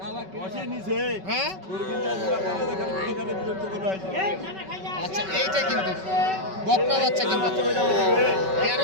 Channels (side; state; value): left; late; 5.3 ms